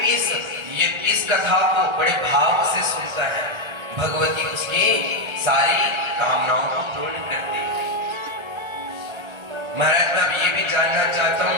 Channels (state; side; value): late; left; 1.3 ms